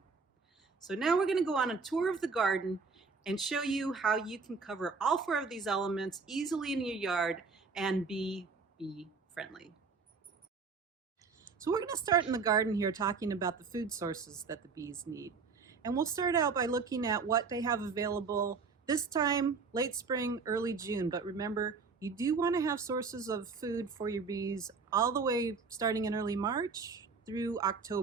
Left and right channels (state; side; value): quieter; left; 4.9 dB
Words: So now we're going to go on a tour of the garden and show you how you can cover all four of these elements easily in your yard and be bee friendly. So we're going to start in the garden here talking about the food sources that the bees need. And we'll start out by looking at what they have available this time, late spring, early June. But remember, you do want to have sources of food for your bees all the way starting in early March through